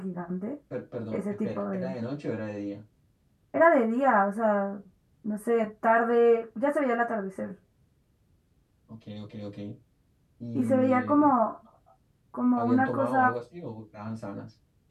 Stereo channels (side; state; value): both; identical; correlation 1.00